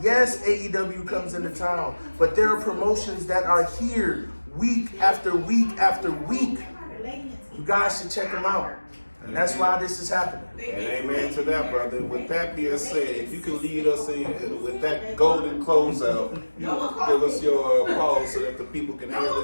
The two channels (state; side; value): inverted; both; correlation -1.00